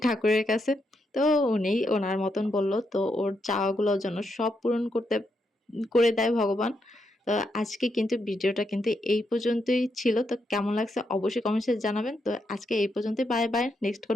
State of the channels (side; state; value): both; normal; correlation 0.81